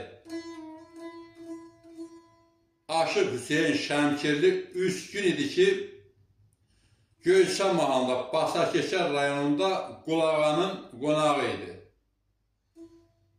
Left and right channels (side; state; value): both; identical; correlation 1.00